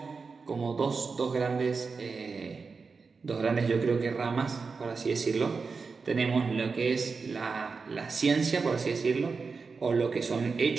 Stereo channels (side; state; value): left; quieter; 4.8 dB